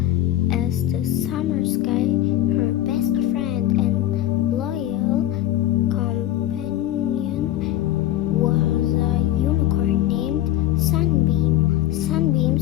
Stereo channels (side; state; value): right; quieter; 13.5 dB